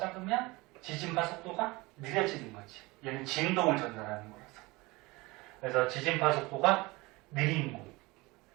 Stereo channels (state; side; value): quieter; left; 22.9 dB